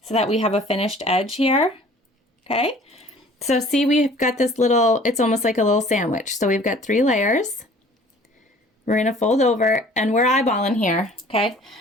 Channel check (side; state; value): both; normal; correlation 0.50